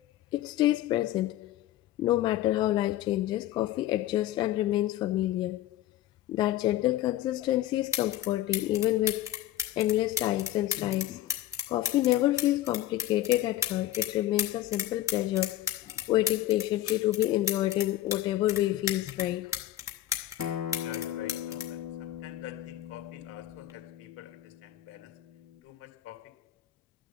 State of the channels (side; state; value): right; quieter; 13.8 dB